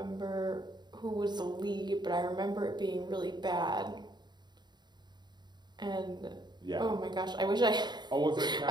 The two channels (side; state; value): left; late; 0.21 ms